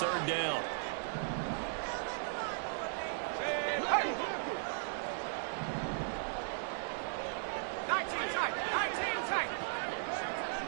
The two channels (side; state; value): left; silent; 53 dB below the other